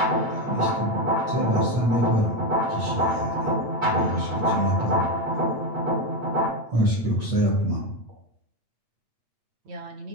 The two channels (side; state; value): left; late; 8.6 ms